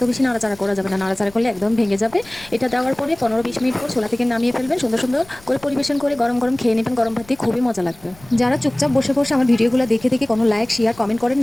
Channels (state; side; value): noise; left; rumble, 24 dB below the sound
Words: বেশি নাড়াচাড়া করা যাবে না, নাড়াচাড়া করলে একদম ভেঙে যাবে। এটা দেওয়ার পরে 15-20 মিনিট পর ছোলা থেকে নামিয়ে ফেলবেন। সুন্দর সুন্দর করে পরিবেশন করে গরম গরম খেয়ে নেবেন। গরম ভাত দিয়ে খুবই মজা লাগবে। যারা চুপচাপ বসে বসে আমার ভিডিওগুলো দেখে দেখে কোনো লাইক শেয়ার কমেন্ট করেন